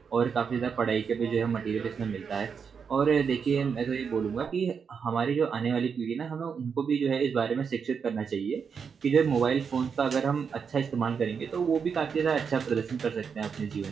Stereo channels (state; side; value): quieter; left; 6.3 dB